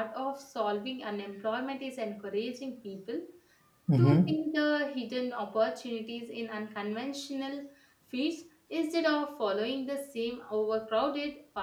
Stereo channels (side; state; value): both; identical; correlation 1.00